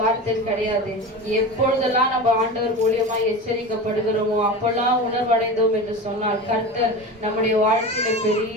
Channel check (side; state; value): both; normal; correlation 0.28